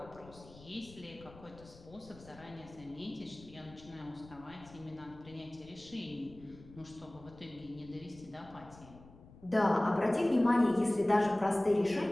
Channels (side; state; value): left; noise; rumble, 21 dB below the sound